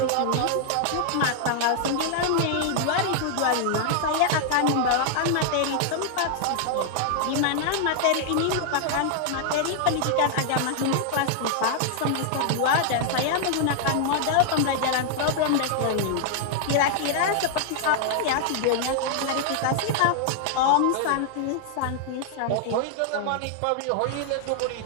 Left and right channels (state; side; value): different; both; correlation 0.00